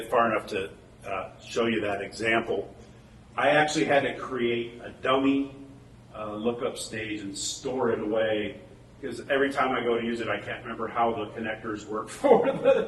far enough to show you that example. I actually had to create a dummy lookup stage and store it away because every time I go to use it, I can't remember how the connectors work for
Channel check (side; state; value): both; identical; correlation 1.00